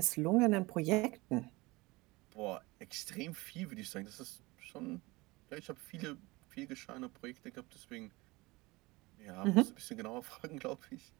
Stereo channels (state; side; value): quieter; left; 22.5 dB